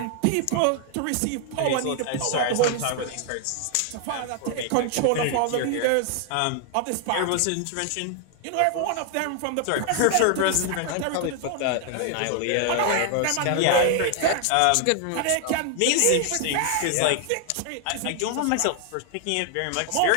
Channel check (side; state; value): both; different; correlation 0.00